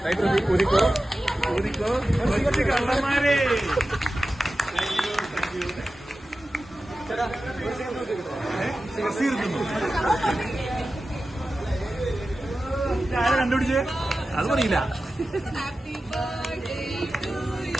Uriko. Kallamare. ആരെ കണ്ടുപിടിച്ചേ അത് പറയില്ല.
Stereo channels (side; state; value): both; normal; correlation 0.94